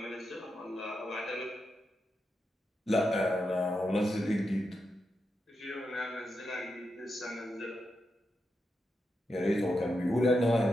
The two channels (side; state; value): both; normal; correlation 0.86